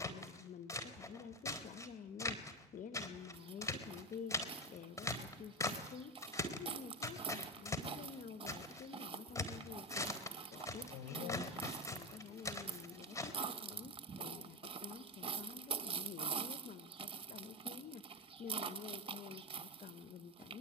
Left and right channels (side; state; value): both; normal; correlation 0.15